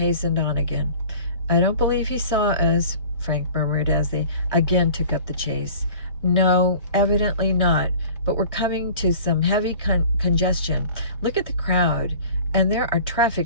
on again. "I don't believe he saw us," Frank murmured as they again took up the chase. "No, evidently not, but we're coming to some heavy congestion. Look at the crowd. And there are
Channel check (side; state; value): both; inverted; correlation -0.44